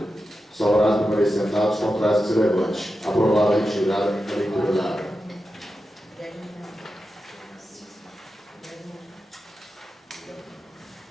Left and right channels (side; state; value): both; normal; correlation 0.90